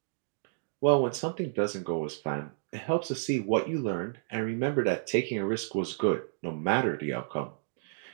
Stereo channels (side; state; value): left; silent; digital silence